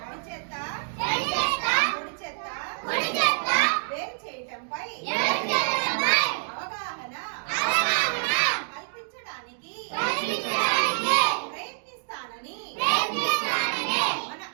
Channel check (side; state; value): left; silent; digital silence